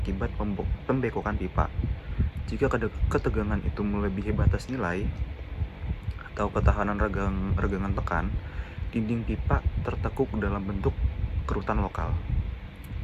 pembekokan pipa. Jika ketegangan itu melebihi batas nilai atau ketahanan regangan tekan, dinding pipa tertekuk dalam bentuk kerutan lokal.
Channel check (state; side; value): identical; both; correlation 1.00